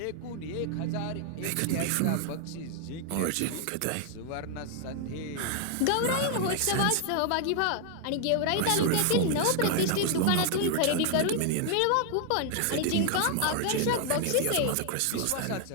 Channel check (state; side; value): different; both; correlation 0.00